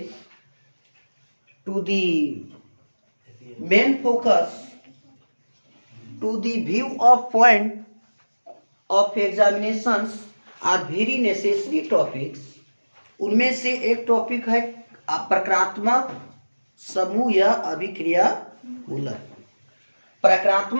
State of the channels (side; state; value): both; inverted; correlation -1.00